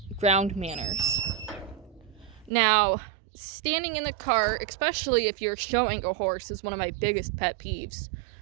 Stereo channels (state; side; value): drops out; left; at 2.5 s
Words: ground manners. Now, standing in the cart, especially if you're showing a horse, is one of my biggest pet peeves.